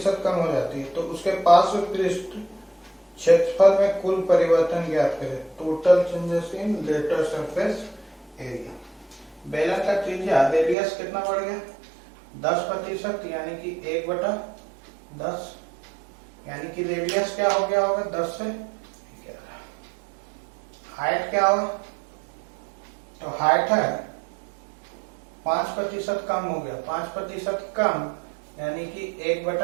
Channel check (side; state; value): left; drops out; at 10.8 s